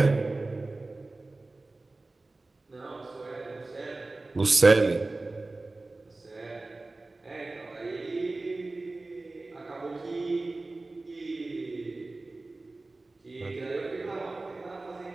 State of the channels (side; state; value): left; quieter; 3.2 dB